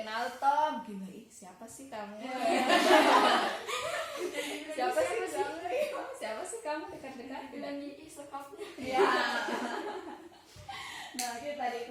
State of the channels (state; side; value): identical; both; correlation 1.00